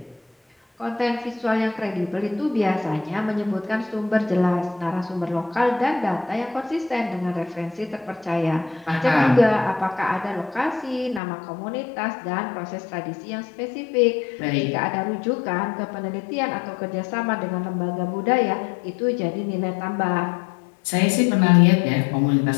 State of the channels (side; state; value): right; drops out; at 11.2 s